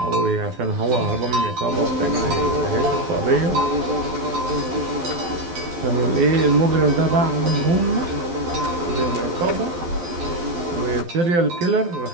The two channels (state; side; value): late; left; 12 ms